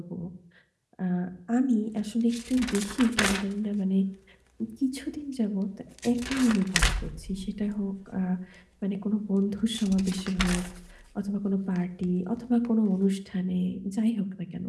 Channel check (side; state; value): both; identical; correlation 1.00